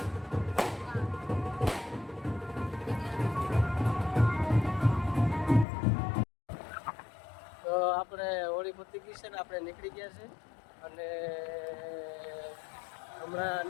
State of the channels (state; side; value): drops out; right; at 5.7 s